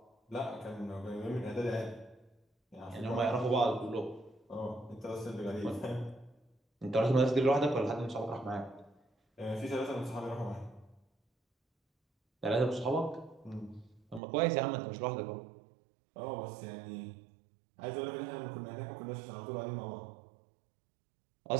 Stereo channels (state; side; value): drops out; left; at 14.2 s